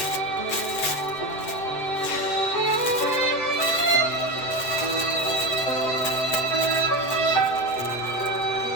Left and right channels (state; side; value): late; right; 8.2 ms